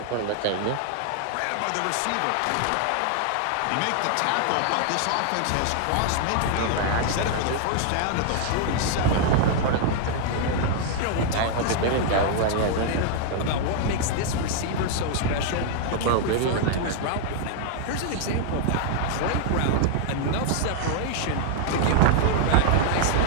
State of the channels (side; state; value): both; different; correlation 0.00